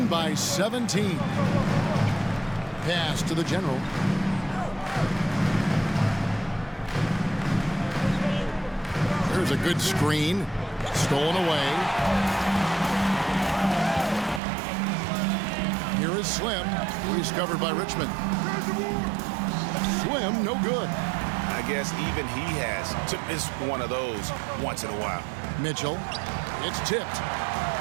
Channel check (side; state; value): left; drops out; at 14.4 s